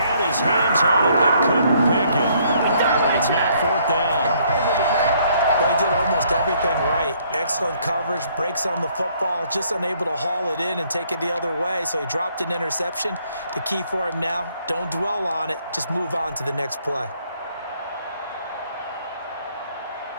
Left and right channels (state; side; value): inverted; both; correlation -0.66